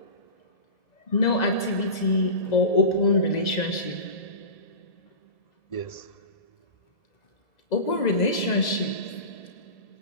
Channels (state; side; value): late; right; 2.0 ms